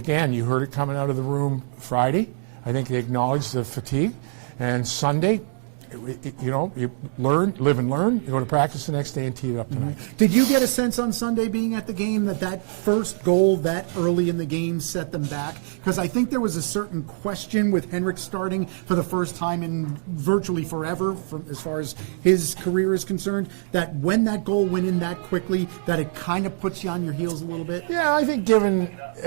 you heard it coming out of the room Friday. I think they acknowledged the fatigue, and Sunday, you learn, live and learn. You go to practice the next day and tee it up tonight. Did you get a sense on Sunday being at the game that first goal that early in the game set them back? Because I think there was a certain question with Henrik starting for the first time in virtually forever, as far as his career is concerned, that when that goal went in that quickly, that it kind of puts you on your heels a little bit? Yeah, I think given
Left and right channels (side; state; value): left; silent; digital silence